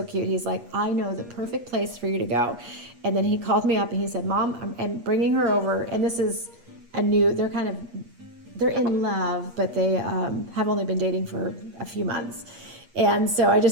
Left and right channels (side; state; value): left; late; 8.4 ms